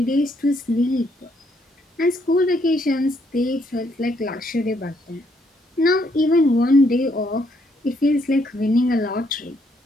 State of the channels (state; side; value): normal; both; correlation 0.72